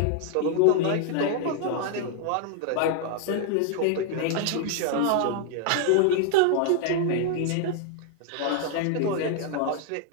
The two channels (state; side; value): different; both; correlation 0.00